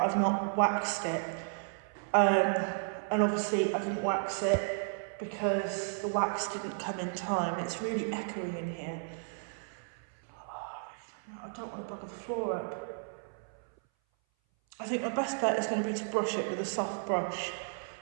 I've not waxed it. And obviously I didn't wax it because the wax didn't come in time. It's really echoey in here. I don't want to bugger the floor up. I think my best bet is going to be to brush it with a soft brush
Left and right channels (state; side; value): silent; left; 55 dB below the other